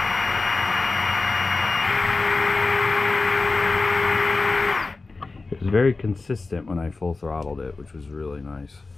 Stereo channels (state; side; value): quieter; right; 3.7 dB